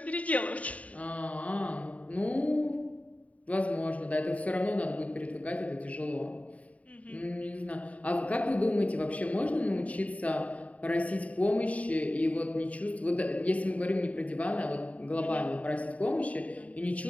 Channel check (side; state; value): right; late; 0.068 ms